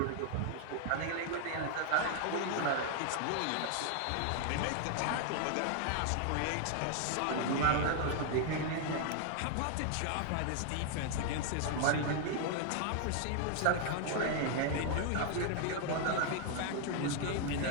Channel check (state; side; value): different; both; correlation 0.00